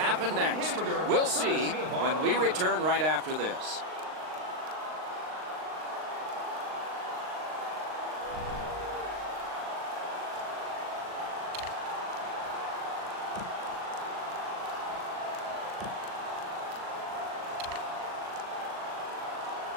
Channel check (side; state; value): left; late; 39 ms